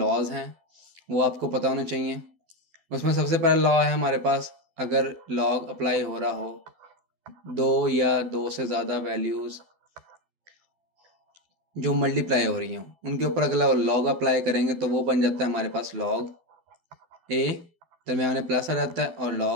हैं, वो आपको पता होने चाहिए। उसमें सबसे पहला लॉ है हमारे पास, अगर लॉग अप्लाई हो रहा हो दो या दो से ज़्यादा वैल्यूज़ जो मल्टीप्लाई हो रही हों, उनके ऊपर अगर लॉग अप्लाई करेंगे तो वो बन जाता है हमारे पास लॉग ए, दरम्यान में प्लस आ जाता है, और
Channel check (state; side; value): late; left; 12 ms